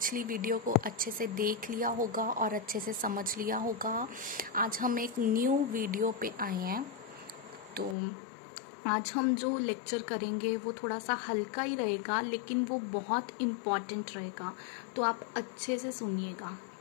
video को अच्छे से देख लिया होगा और अच्छे से समझ लिया होगा। आज हम एक न्यू वीडियो पे आए हैं। तो आज हम जो लेक्चर करेंगे वो थोड़ा सा हल्का ही रहेगा, लेकिन वो बहुत इम्पॉर्टेंट रहेगा, तो आप अच्छे से सुनिएगा,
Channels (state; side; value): drops out; right; at 8.0 s